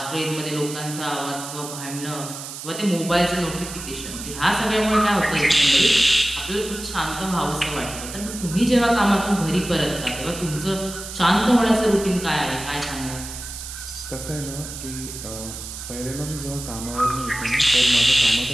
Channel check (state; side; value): noise; right; hiss, 10 dB below the sound